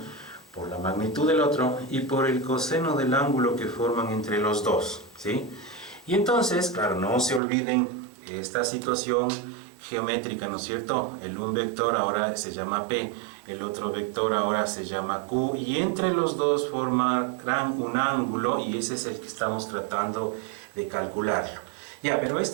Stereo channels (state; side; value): drops out; left; at 7.4 s